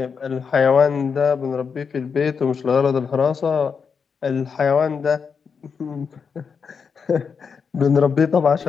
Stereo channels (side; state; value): right; quieter; 6.0 dB